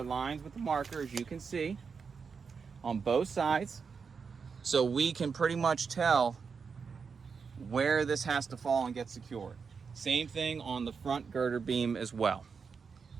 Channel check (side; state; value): left; quieter; 5.6 dB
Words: lines with the marker, as you can see, on both sides, so we can pretty much tell where this has to fall and get secured. Same thing on the front girder beam as well.